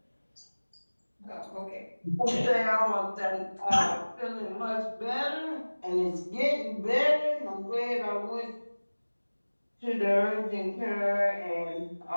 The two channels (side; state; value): both; inverted; correlation -1.00